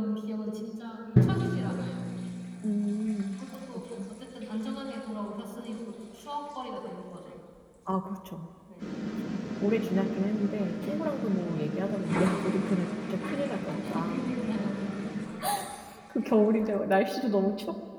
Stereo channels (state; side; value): identical; both; correlation 1.00